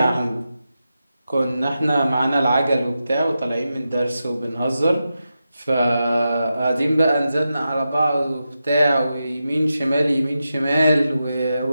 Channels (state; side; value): inverted; both; correlation -0.90